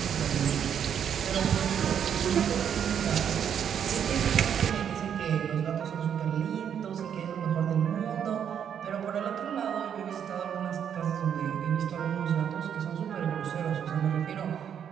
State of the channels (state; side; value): quieter; left; 8.5 dB